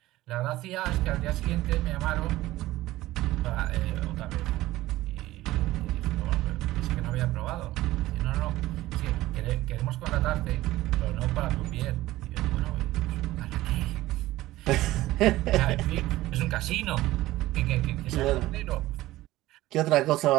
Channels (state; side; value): quieter; left; 16.8 dB